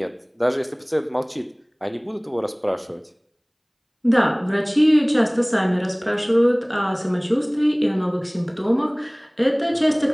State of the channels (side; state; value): both; identical; correlation 1.00